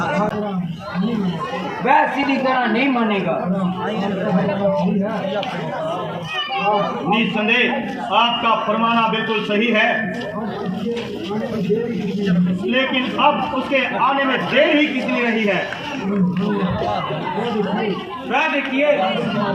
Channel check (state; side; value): identical; both; correlation 1.00